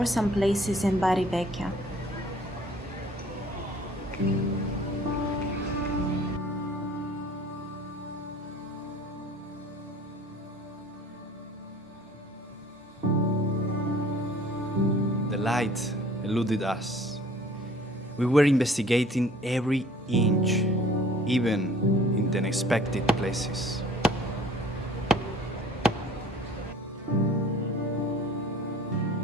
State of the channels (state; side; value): normal; both; correlation 0.51